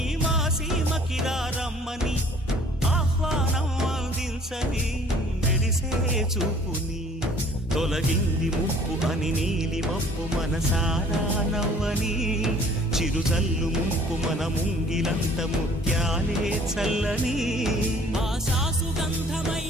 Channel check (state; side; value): normal; both; correlation 0.54